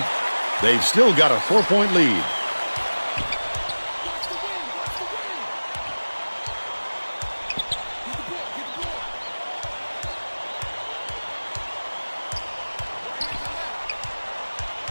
They've still got a 4-point lead.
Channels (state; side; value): inverted; both; correlation -1.00